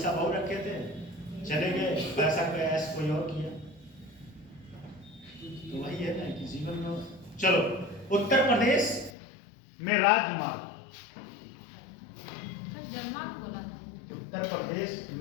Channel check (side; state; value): right; drops out; at 9.2 s